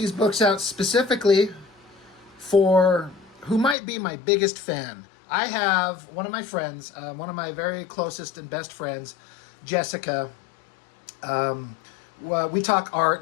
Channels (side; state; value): right; drops out; at 3.8 s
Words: books out specifically for who might be my biggest fan. I have one of my friends, one of my very closest and best friends, Jessica. We talk art